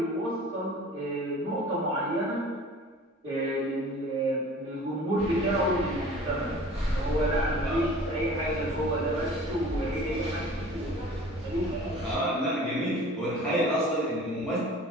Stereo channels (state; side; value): normal; both; correlation 0.45